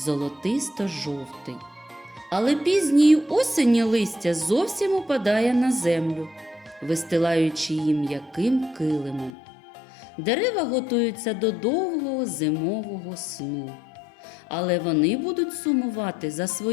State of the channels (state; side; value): drops out; right; at 9.3 s